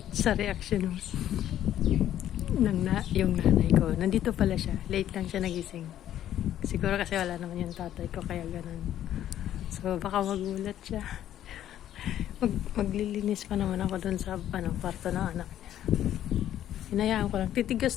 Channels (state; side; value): quieter; right; 11.6 dB